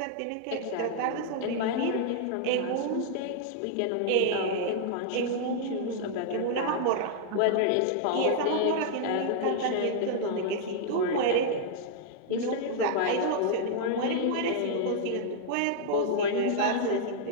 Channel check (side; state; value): both; different; correlation -0.01